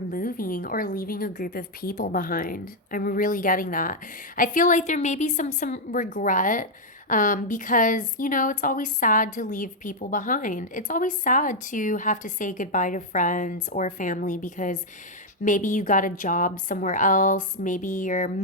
or leaving a group of people behind. I'm really getting that. I feel like there may be some regret, because, it's always sad to leave people behind. It's always sad to have to say goodbye to friends or family because Maybe you got a job somewhere else. Maybe you're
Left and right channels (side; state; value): both; normal; correlation -0.01